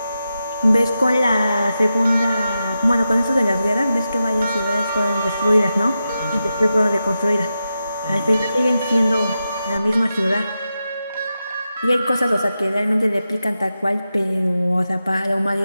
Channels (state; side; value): inverted; both; correlation -0.89